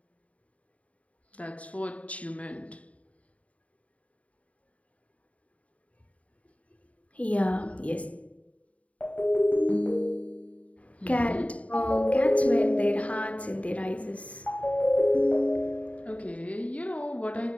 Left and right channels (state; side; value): late; right; 0.067 ms